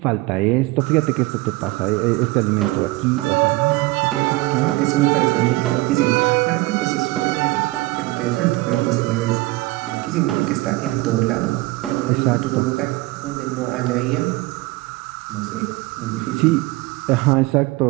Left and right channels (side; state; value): left; quieter; 20.9 dB